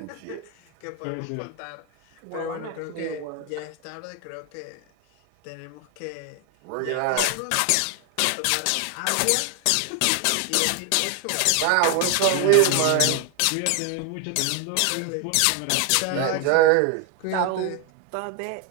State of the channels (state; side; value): different; both; correlation 0.01